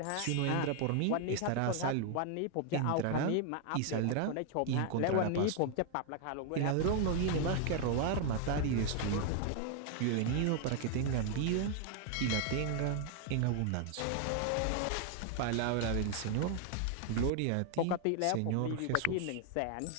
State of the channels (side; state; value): both; different; correlation 0.00